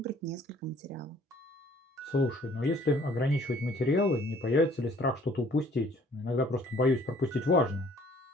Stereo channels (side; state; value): both; normal; correlation 0.57